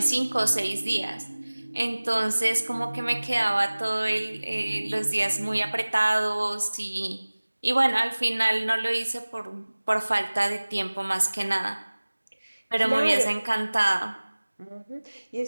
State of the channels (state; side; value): inverted; both; correlation -1.00